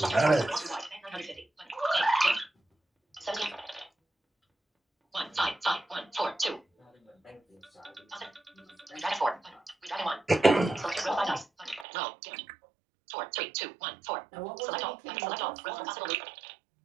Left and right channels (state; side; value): drops out; left; at 11.9 s